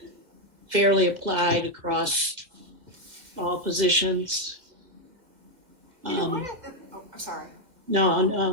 fairly applied across all positions. I'm sorry.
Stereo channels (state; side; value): late; left; 2.0 ms